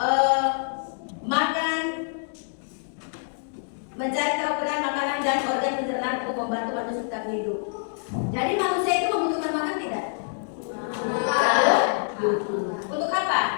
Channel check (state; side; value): silent; right; digital silence